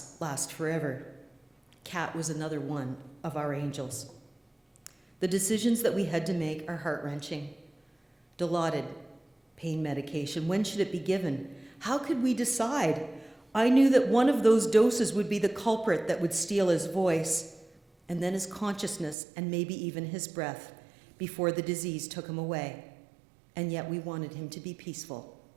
last forever. Kat was another one of our angels. The decisions that we had to make are heart-wrenching. Dilaudid, pain medication, when should it be given? How could we decide? I knew that one of those doses would be the culprit that would steal his voice, and then his consciousness, and maybe even his breath, before the disease took him away. And yet we wanted him to be peaceful.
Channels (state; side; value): drops out; left; at 19.2 s